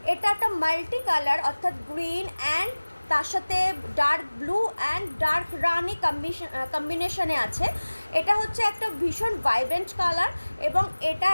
এটা একটা মাল্টি কালার অর্থাৎ গ্রিন অ্যান্ড তার সাথে ডার্ক ব্লু অ্যান্ড ডার্ক রানি কম্বিনেশনে আছে। এটা হচ্ছে একটা ভীষণ ভাইব্রেন্ট কালার এবং এটা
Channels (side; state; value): both; inverted; correlation -1.00